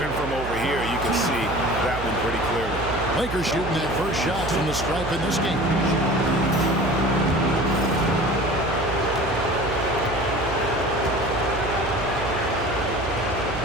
from over here, you can see that one pretty clearly. Lakers shooting their first shot from the stripe in this game.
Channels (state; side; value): noise; right; hum, 9 dB below the sound